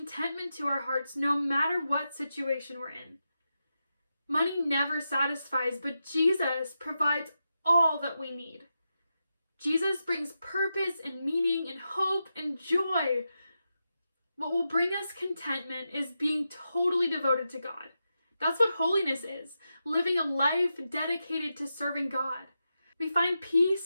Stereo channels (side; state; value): both; inverted; correlation -0.88